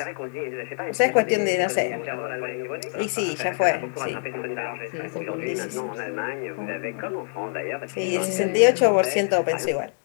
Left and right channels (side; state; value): right; silent; 62 dB below the other